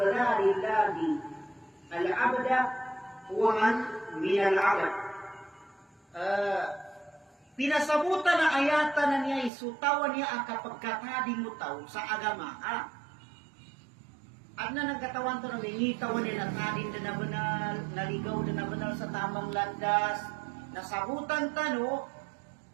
الله العبد هو من العبد. Pinasabutan na ayatan na niya isutawan niya ang kapagkatading mutaw sa agama. At na nagkatawan to na mingitawan niya natadin na nabanal, naligaw na nabanal sa tamang landas, nasabutan tano,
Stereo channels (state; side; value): drops out; left; at 9.5 s